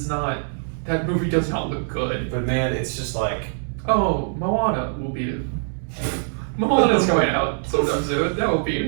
not, that movie does not look good. But, man, it's just like... Oh, Moana will beat it. Moana's going out sometime soon. That will beat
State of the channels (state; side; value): silent; left; digital silence